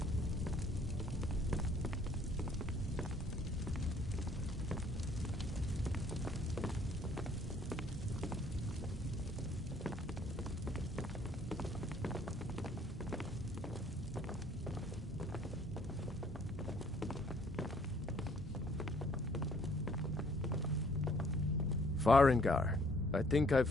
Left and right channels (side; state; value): both; normal; correlation 0.61